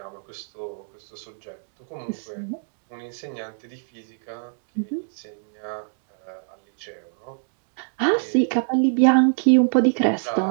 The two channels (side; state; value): left; silent; digital silence